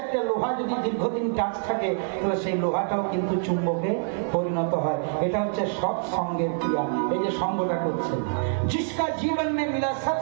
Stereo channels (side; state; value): left; silent; digital silence